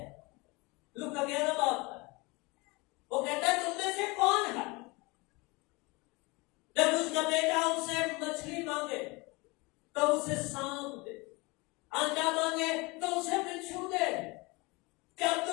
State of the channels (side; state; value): right; quieter; 25.6 dB